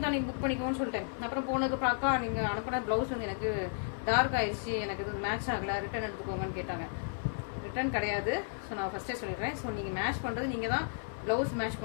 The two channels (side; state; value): right; silent; 55 dB below the other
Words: தான் நீங்கள் புக் பண்ணிக்கோன்னு சொல்லிட்டேன். அப்புறம் போனதுக்கப்புறம் அக்கா நீங்கள் அனுப்பின ப்ளவுஸ் வந்து எனக்கு டார்க் ஆயிடுச்சு, எனக்கு இது மேட்ச் ஆகலை, ரிட்டர்ன் எடுத்துக்கோங்கன்னு கேட்டாங்க. ரிட்டர்ன் கிடையாது. ஸோ நான் ஃபஸ்ட்டே சொல்லிடுறேன். ஸோ நீங்கள் மேட்ச் பண்ணுறது நீங்கள் தான். ப்ளவுஸ் மேட்ச்